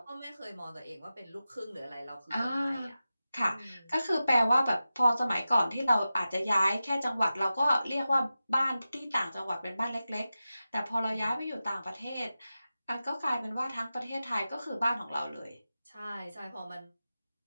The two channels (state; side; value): inverted; both; correlation -0.94